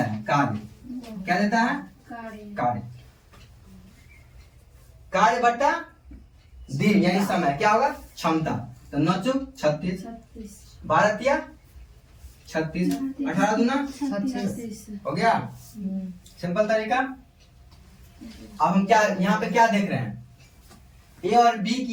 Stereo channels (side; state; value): both; identical; correlation 1.00